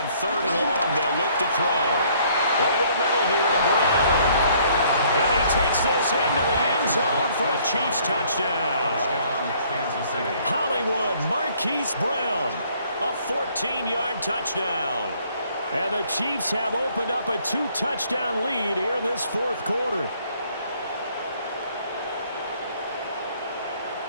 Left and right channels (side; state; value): both; inverted; correlation -0.62